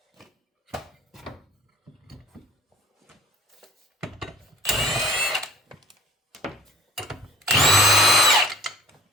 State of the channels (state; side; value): normal; both; correlation 0.53